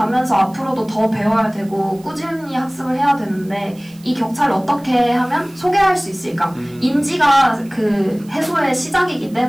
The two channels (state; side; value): noise; right; hiss, 26 dB below the sound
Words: 앞으로도 더 배워야 되고 꾸준히 학습을 해야 되는데 이 격차를 어떻게 하면 소개할 수 있을까? 인지가 그 해소의 시작이기